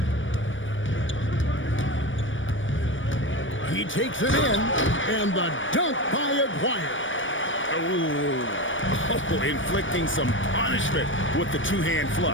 He takes it in, and the dunk by Aguirre. Oh, inflicting some punishment with the two-hand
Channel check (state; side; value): late; right; 0.56 ms